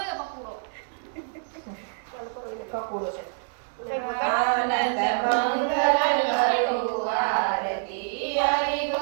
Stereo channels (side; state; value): left; silent; digital silence